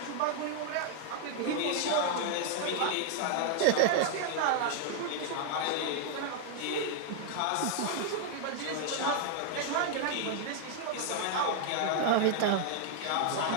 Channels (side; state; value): both; different; correlation 0.00